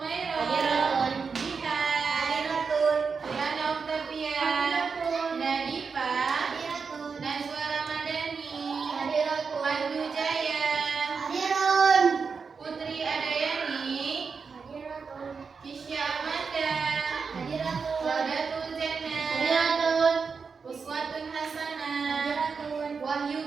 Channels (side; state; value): left; quieter; 5.3 dB